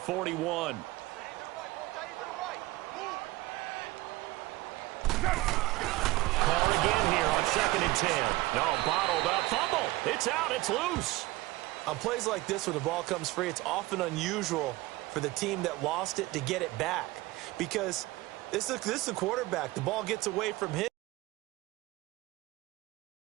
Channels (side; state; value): left; quieter; 19.4 dB